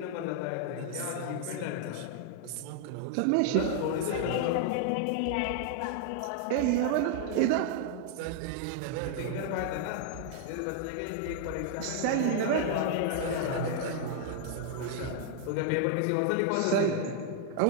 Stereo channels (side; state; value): both; different; correlation 0.00